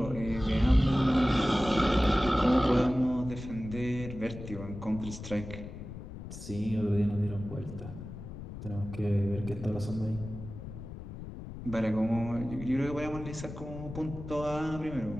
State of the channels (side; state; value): left; noise; rumble, 11 dB below the sound